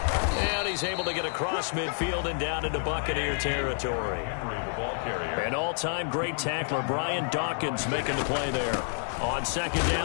And he's able to get across midfield and down into Buccaneer territory. An all-time great tackler, Brian Dawkins, making the play there. On 2nd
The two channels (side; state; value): right; silent; 59 dB below the other